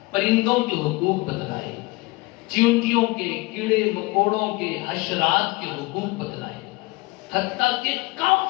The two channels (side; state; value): right; quieter; 23.0 dB